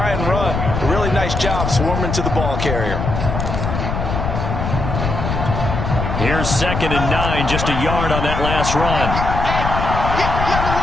and run. A really nice job swarming to the ball carrier. Here's 2nd and 9, just a yard on that last run.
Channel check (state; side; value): noise; left; rumble, 3 dB below the sound